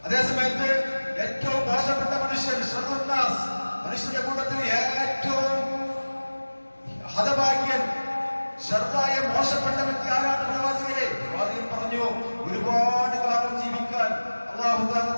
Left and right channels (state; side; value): inverted; both; correlation -1.00